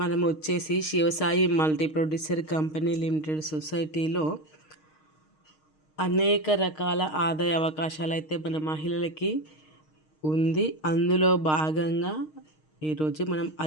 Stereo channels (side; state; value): right; late; 6.5 ms